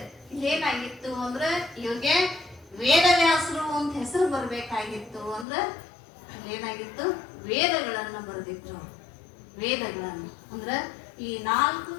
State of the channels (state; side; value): drops out; right; at 5.5 s